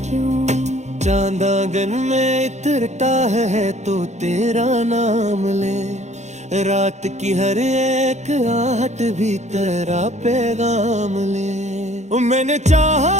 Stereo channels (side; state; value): left; late; 0.33 ms